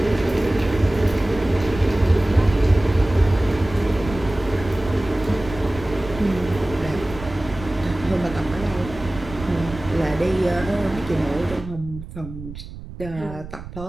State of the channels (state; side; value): noise; right; rumble, 13 dB below the sound